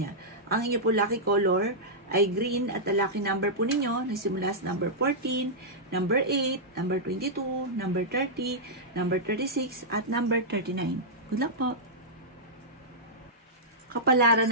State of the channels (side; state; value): both; normal; correlation -0.10